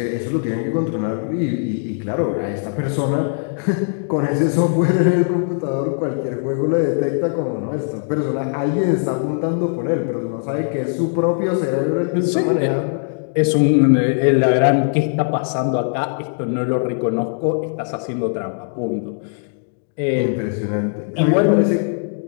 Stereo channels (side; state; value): right; silent; digital silence